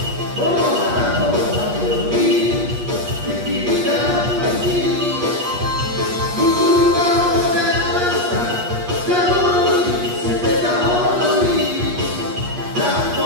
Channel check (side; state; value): left; late; 8.4 ms